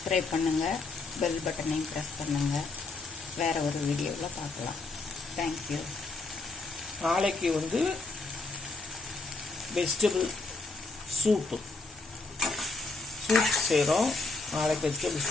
பண்ணுங்கள், பெல் பட்டனையும் ப்ரெஸ் பண்ணுங்கள். வேற ஒரு வீடியோவில் பார்க்கலாம். தேங்க்யூ. நாளைக்கு வந்து வெஜிடபிள் சூப் செய்கிறோம். நாளைக்கு வெஜிடபிள்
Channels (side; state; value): right; quieter; 3.5 dB